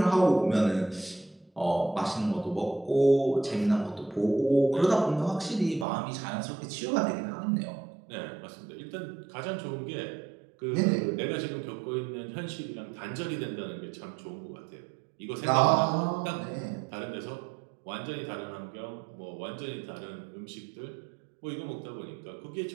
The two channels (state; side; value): drops out; left; at 5.9 s